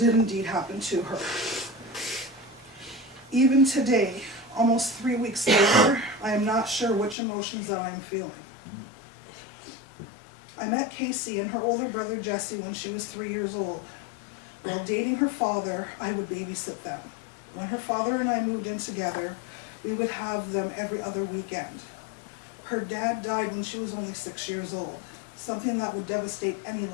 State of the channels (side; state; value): right; drops out; at 7.2 s